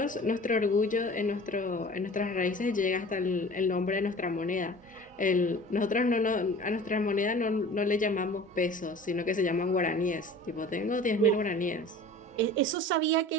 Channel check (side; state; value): both; normal; correlation 0.43